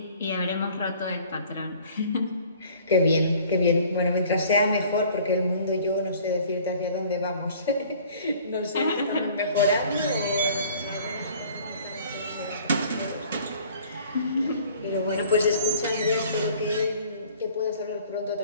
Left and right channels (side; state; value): both; inverted; correlation -0.52